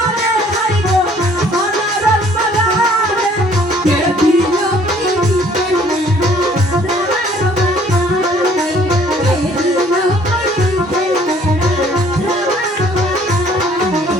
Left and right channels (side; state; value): both; normal; correlation 0.59